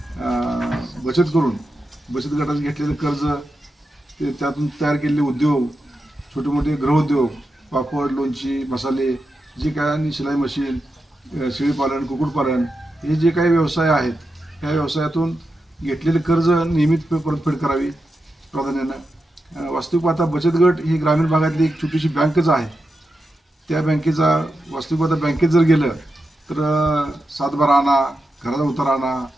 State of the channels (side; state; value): both; normal; correlation 0.88